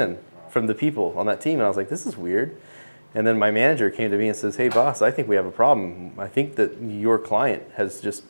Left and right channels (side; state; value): both; inverted; correlation -1.00